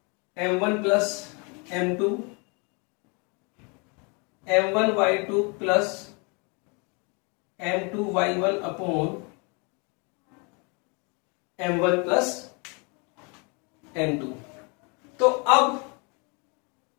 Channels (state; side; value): quieter; right; 32.7 dB